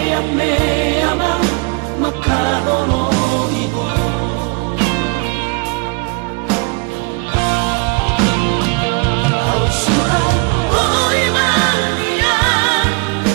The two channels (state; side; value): quieter; left; 30.6 dB